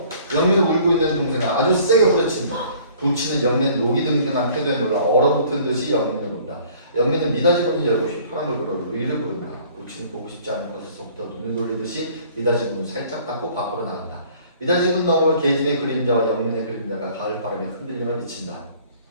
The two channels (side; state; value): both; inverted; correlation -0.54